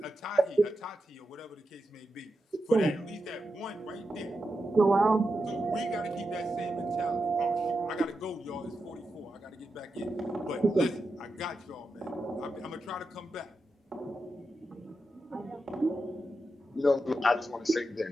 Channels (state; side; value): normal; both; correlation 0.89